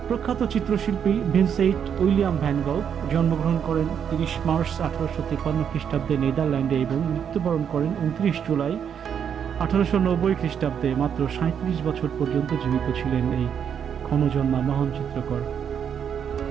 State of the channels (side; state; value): left; quieter; 8.0 dB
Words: প্রখ্যাত চিত্রশিল্পী ভিনসেন্ট উইলিয়াম ভ্যান গঘ জন্মগ্রহণ করেন 30 মার্চ 1853 খ্রিস্টাব্দে নেদারল্যান্ডে এবং মৃত্যুবরণ করেন 29 জুলাই 1890 খ্রিস্টাব্দে। মাত্র 37 বছর পর্যন্ত জীবিত ছিলেন এই ক্ষণজন্মা মহান চিত্রকর।